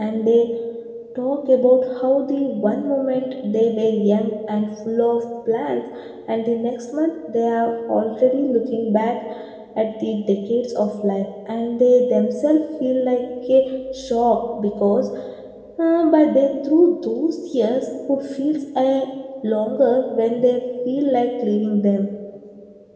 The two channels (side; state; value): both; identical; correlation 1.00